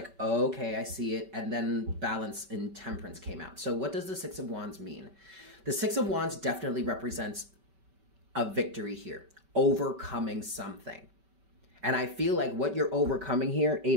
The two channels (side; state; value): left; late; 5.2 ms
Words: okay, I see it. And then Balance and Temperance came out. So what does the Six of Wands mean? The Six of Wands definitely represents a victory here, overcoming something. And I feel like what you're overcoming here,